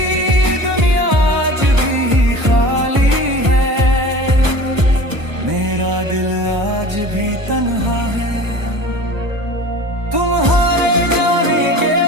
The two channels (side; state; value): left; late; 1.1 ms